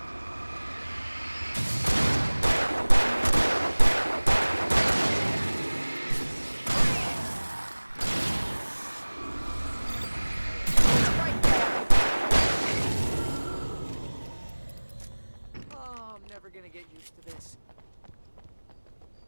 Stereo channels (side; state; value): both; inverted; correlation -1.00